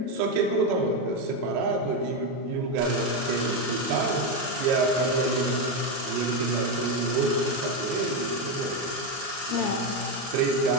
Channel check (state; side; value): late; left; 22 ms